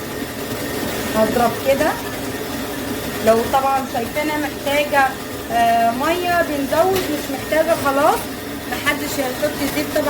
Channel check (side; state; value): both; identical; correlation 1.00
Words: هضرب كده. لو طبعا شايفينها محتاجة مية بنزود، مش محتاجة خلاص محدش هيحط زيت.